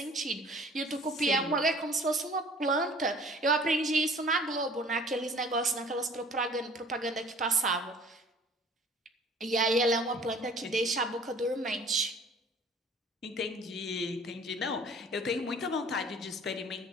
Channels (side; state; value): both; normal; correlation 0.51